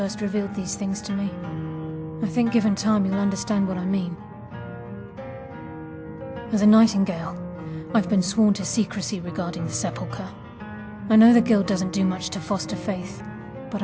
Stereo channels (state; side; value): identical; both; correlation 1.00